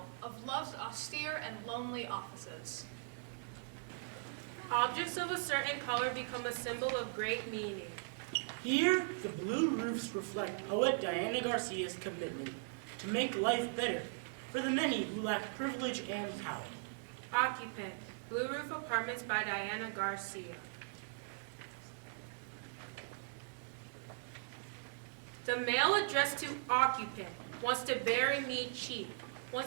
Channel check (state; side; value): silent; left; digital silence